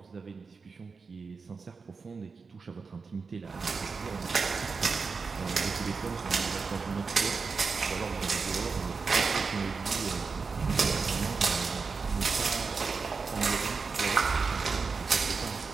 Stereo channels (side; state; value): left; quieter; 4.8 dB